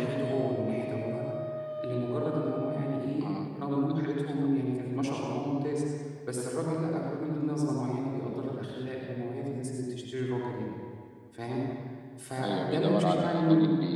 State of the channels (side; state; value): both; identical; correlation 1.00